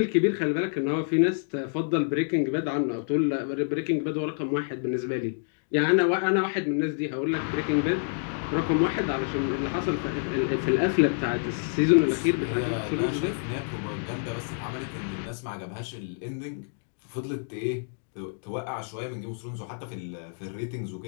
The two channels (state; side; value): silent; right; digital silence